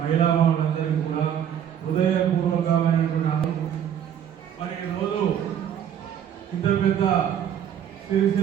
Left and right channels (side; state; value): left; quieter; 9.4 dB